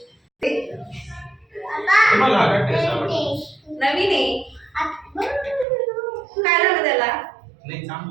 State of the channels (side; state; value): left; drops out; at 5.7 s